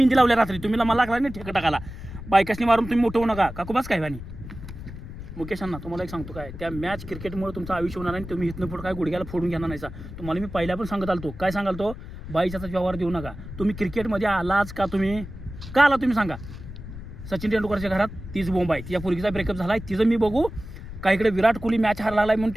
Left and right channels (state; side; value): noise; left; rumble, 12 dB below the sound